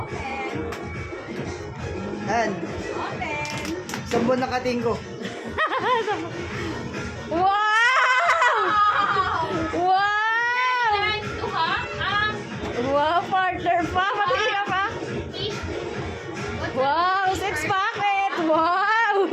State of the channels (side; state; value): both; identical; correlation 1.00